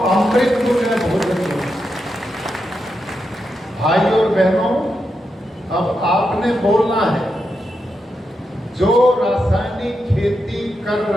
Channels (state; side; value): normal; both; correlation 0.86